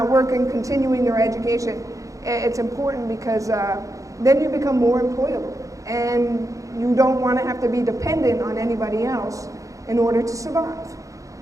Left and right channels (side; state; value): left; late; 0.16 ms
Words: working, continuing your education, it's important because then you become more employable. And you don't want to have to be dependent on anybody else in order to survive.